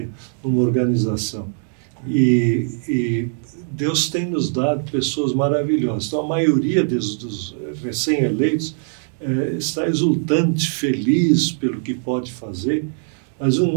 numa organização. E Deus tem nos dado pessoas maravilhosas. Então, a maioria dos recém-eleitos está exultante, feliz pelo que pode fazer. Mas um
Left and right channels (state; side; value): silent; left; digital silence